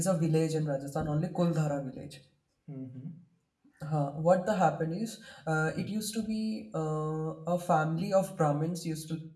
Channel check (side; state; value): both; identical; correlation 1.00